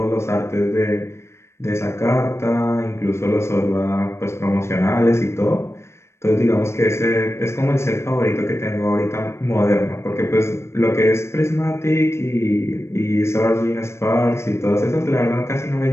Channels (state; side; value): late; right; 0.13 ms